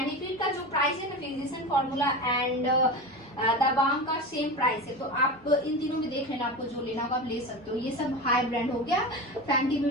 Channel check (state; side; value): normal; both; correlation 0.25